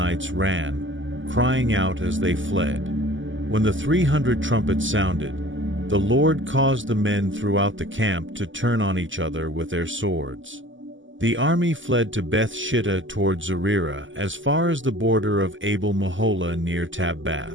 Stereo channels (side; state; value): left; late; 0.56 ms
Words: ran, crying out as they fled. When the 300 trumpets sounded, the Lord caused the men throughout the camp to turn on each other with their swords. The army fled to Beth-shittah toward Zererah as far as the border of Abel-Meholah near